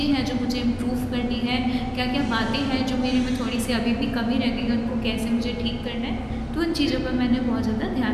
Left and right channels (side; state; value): both; identical; correlation 1.00